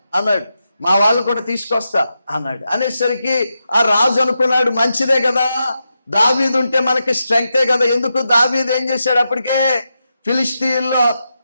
అన్నాడు. మా వాళ్ళు కూడా తీసుకొస్తా అన్నాడు. అనేసరికి ఆ రాజు అనుకున్నాడు, మంచిదే కదా, దావీదు ఉంటే మనకి స్ట్రెంగ్తే కదా. ఎందుకు దావీదు ఏం చేశాడు, అప్పటికే ఫిలిష్తీయుల్లో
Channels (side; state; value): both; inverted; correlation -0.88